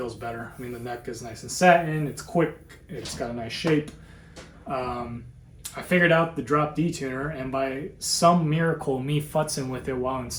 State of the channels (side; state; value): both; identical; correlation 1.00